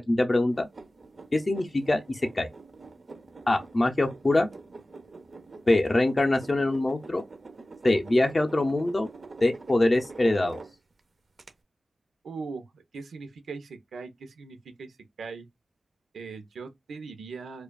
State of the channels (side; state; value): both; normal; correlation 0.97